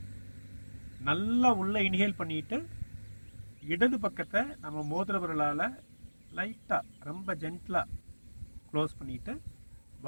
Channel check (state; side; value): inverted; both; correlation -1.00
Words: நல்லா உள்ளே இன்ஹேல் பண்ணிவிட்டு இடது பக்கத்தை நம்ம மோதிர விரலால் லைட்டாக ரொம்ப ஜென்டிலாக க்ளோஸ் பண்ணிவிட்டு